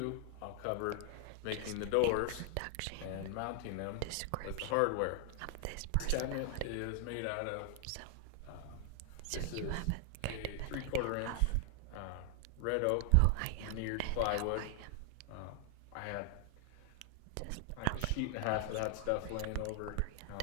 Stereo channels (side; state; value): both; different; correlation 0.00